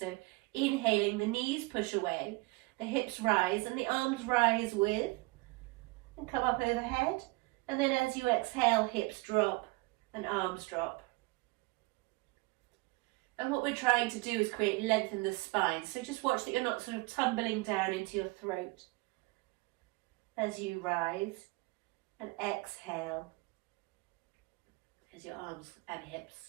inhaling, the knees push away. The hips rise and the arms rise with. And come up overhead. And then as you exhale, hips drop and arms drop. And what we're trying to do is create length in the spine. So just watch that you're not sort of tumbling down into your throat as you rise, and exhale as your arms and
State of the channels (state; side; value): quieter; left; 24.2 dB